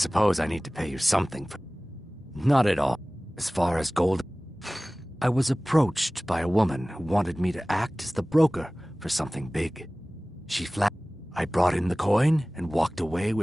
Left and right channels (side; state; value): both; normal; correlation 0.98